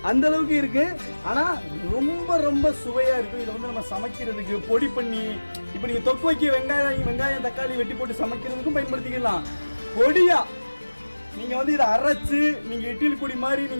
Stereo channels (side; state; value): both; inverted; correlation -1.00